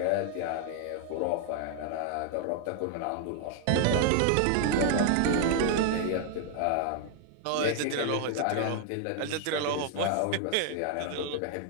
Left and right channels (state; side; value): different; both; correlation 0.00